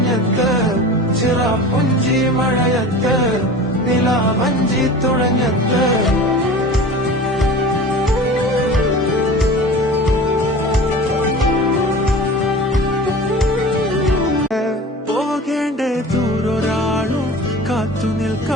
ചിറാപ്പുഞ്ചി മഴയത്ത് നിലാവഞ്ചി തുഴഞ്ഞത്ത്. പോകേണ്ട ദൂരൊരാളും കാത്തു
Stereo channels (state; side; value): normal; both; correlation 0.37